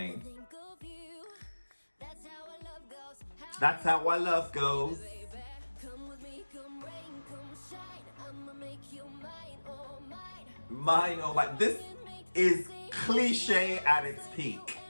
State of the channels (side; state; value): both; inverted; correlation -1.00